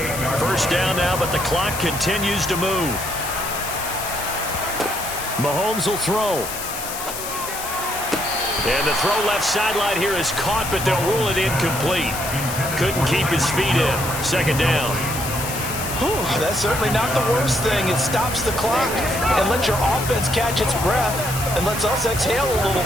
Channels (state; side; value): noise; left; hiss, 7 dB below the sound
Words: First down now, but the clock continues to move. Mahomes will throw. And the throw left sideline here is caught, but they'll rule it incomplete. Couldn't keep his feet in. 2nd down. Whew, that's certainly not the worst thing. It stops the clock and lets your offense catch its breath and lets us exhale a little